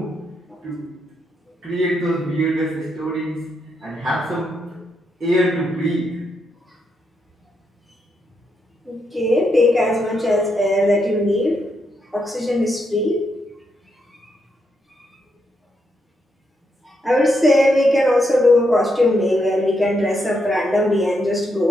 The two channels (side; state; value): both; normal; correlation 0.80